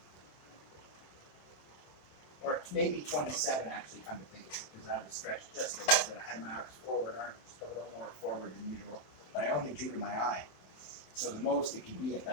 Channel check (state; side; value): late; right; 27 ms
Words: Or maybe 27, actually, come to think of it, because I was stretched just a little bit. I had my arms forward, just a little more forward than usual, but I only drew to my eye. So the most it can be at